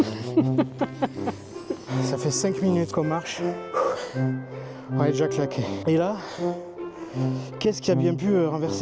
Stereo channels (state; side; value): identical; both; correlation 1.00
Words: Ça fait 5 minutes qu'on marche. On est déjà claqué. Et là, qu'est-ce qui a bien pu